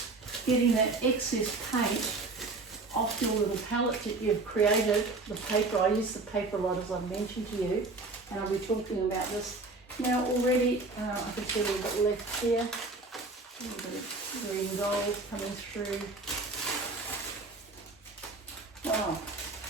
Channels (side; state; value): left; quieter; 3.5 dB